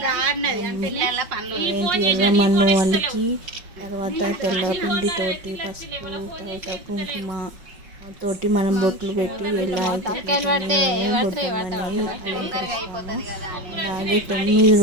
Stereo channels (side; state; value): left; late; 5.5 ms